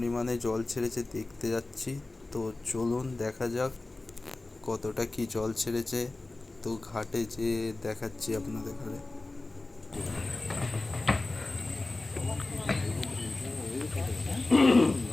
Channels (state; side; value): quieter; right; 3.1 dB